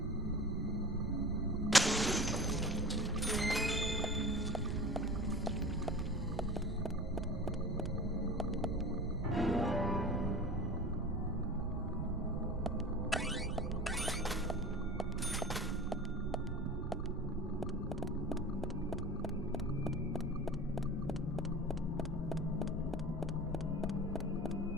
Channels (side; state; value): both; normal; correlation 0.36